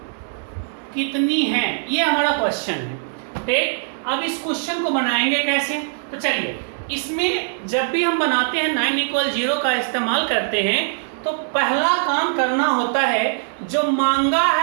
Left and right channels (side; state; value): left; silent; 65 dB below the other